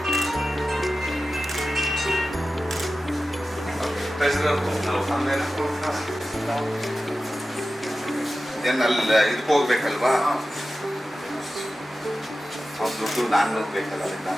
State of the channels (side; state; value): both; normal; correlation 0.94